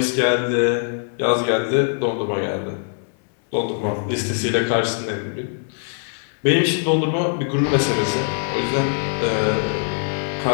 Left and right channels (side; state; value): right; silent; 64 dB below the other